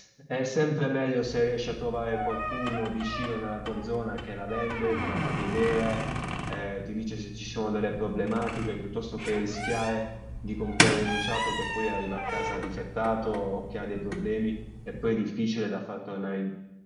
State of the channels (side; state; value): both; identical; correlation 1.00